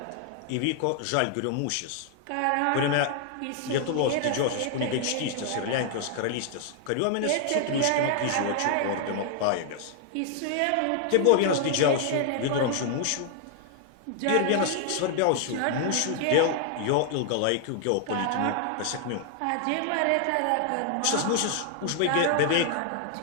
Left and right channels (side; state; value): both; different; correlation 0.00